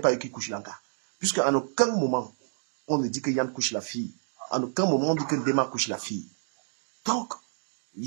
eux qui couchent l'anga. Puisqu'à aucun moment, on ne dit que Yann couche la fille. En aucun moment, on dit que Dema couche la fille. Donc,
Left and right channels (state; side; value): silent; left; digital silence